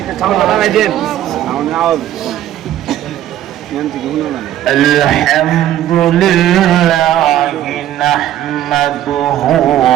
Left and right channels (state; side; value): quieter; left; 12.2 dB